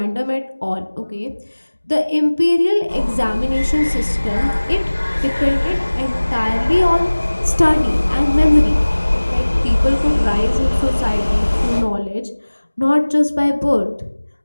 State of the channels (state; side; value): inverted; both; correlation -1.00